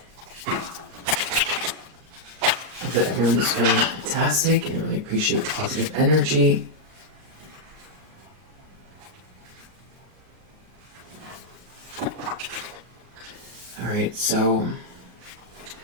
Hope that everyone is feeling fantastic and I really appreciate the positive energy. Alright, so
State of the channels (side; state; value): left; late; 38 ms